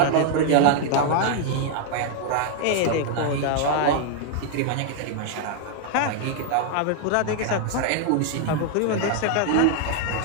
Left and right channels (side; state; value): both; different; correlation 0.00